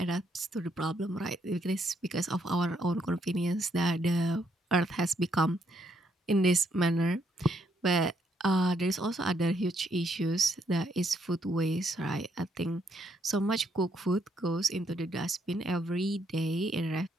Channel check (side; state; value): both; normal; correlation 0.73